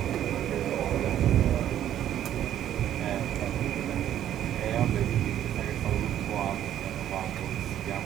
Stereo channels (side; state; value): left; quieter; 11.2 dB